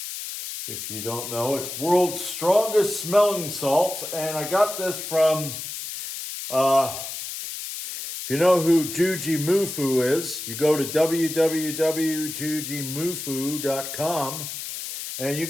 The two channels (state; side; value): noise; left; hiss, 7 dB below the sound